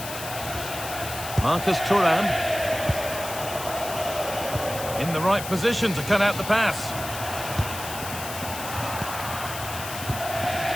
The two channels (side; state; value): left; noise; hiss, 9 dB below the sound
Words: Marcus Thuram. In the right position to cut out the pass.